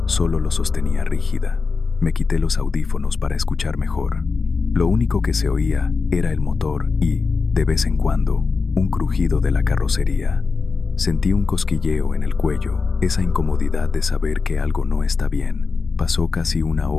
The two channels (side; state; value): right; quieter; 4.6 dB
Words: solo lo sostenía rígida. Me quité los audífonos para escuchar mejor. Lo único que se oía era el motor y, de vez en cuando, un crujido de la carrocería. Sentí un cosquilleo en el cuello, esa incomodidad de saber que algo no está bien. Pasó casi una